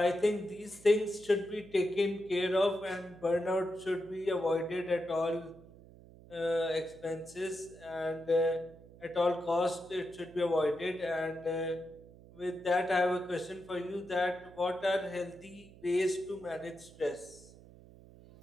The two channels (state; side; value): noise; right; hum, 21 dB below the sound